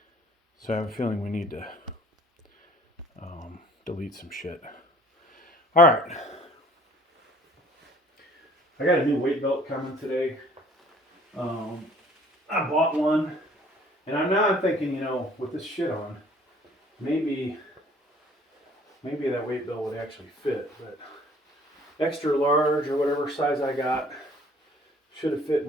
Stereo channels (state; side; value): normal; both; correlation 0.55